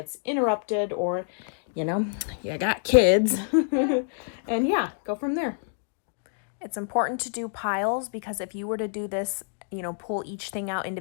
interrupted or, you know, you got kids. And yeah, go from there. It's important to do piles because if you were to do this, you know, pull each thing out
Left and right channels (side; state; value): right; silent; digital silence